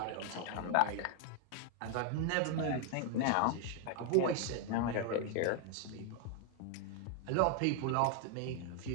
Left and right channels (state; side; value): different; both; correlation 0.00